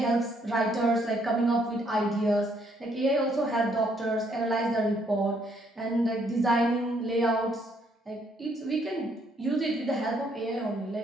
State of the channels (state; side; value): normal; both; correlation 0.69